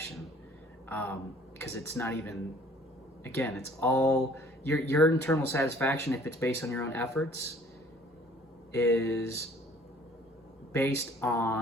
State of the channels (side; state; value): both; normal; correlation 0.55